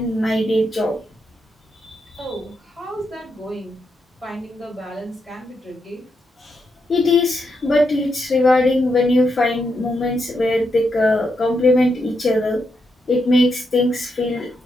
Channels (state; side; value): normal; both; correlation 0.82